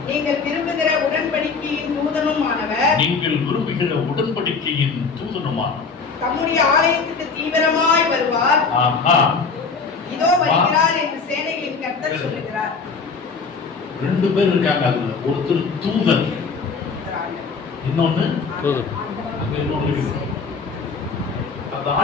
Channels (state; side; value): quieter; right; 4.9 dB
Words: நீங்கள் விரும்புகிற உடன்படிக்கையின் தூதனுமானவர், நீங்கள் விரும்புகிற உடன்படிக்கையின் தூதனுமானவர் தம்முடைய ஆலயத்துக்கு தீவிரமாய் வருவார். இதோ வருகிறார் என்று சேனைகளின் கர்த்தர் சொல்லுகிறார். 2 பேர் இருக்காங்க. அதுல ஒருத்தர் தூதன், இன்னொன்னு அங்க இன்னொன்னு இருக்கு. அந்த